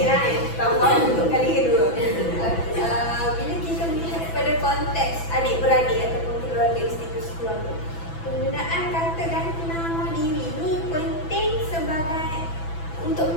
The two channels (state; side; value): late; right; 6.0 ms